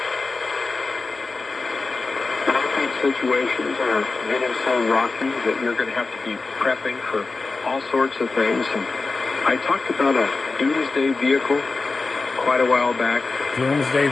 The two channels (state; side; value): quieter; right; 3.8 dB